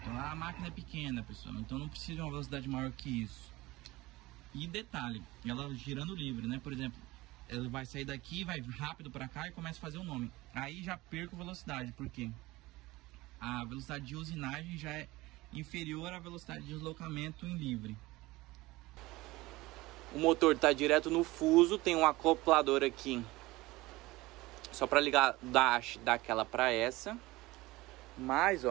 A máquina é pequena, pessoal, então não precisa de uma velocidade maior que isso. E detalhe, ela girando livre, né? Por exemplo, ela vai sair daqui, vai rápido para cá e começa a fazer o nome. Aí já perco velocidade, porque a velocidade de usinagem já é inferior à velocidade de deslocamento em livre. O motor está direto no fuso, tem um acoplador aqui só para ligar da haste daquela para essa. Mas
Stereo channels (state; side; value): quieter; left; 19.8 dB